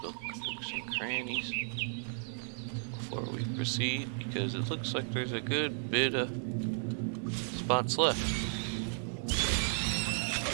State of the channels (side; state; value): left; silent; 55 dB below the other